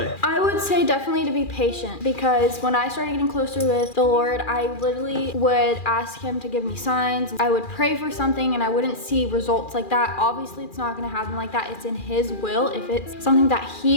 I would say definitely to be patient because when I started getting closer with the Lord, I literally would ask him to give me signs. I would pray for something and I wouldn't see results like that. Obviously, it's not going to happen like that. It's in his will. If it's something that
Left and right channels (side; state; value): right; late; 2.4 ms